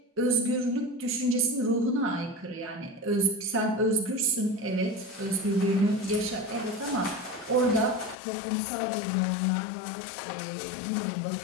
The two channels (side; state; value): right; drops out; at 8.2 s